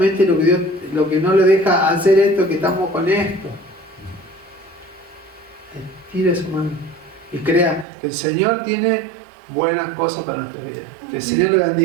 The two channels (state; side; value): drops out; left; at 7.9 s